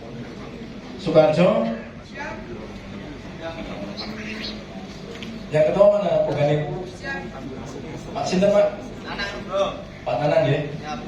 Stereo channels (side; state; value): both; identical; correlation 1.00